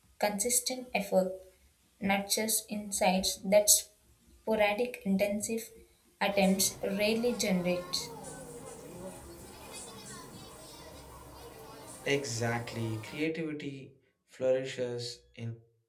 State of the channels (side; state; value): both; identical; correlation 1.00